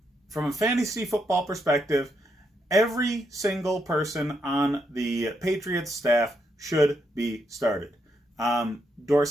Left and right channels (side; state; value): both; normal; correlation 0.79